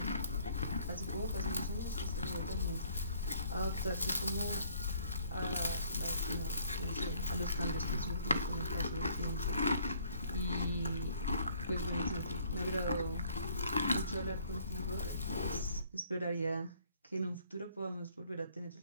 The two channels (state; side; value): inverted; both; correlation -0.60